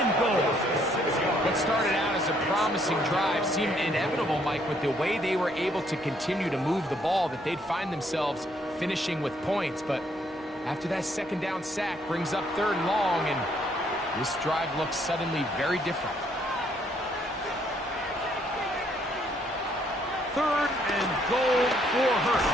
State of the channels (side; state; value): both; normal; correlation 0.68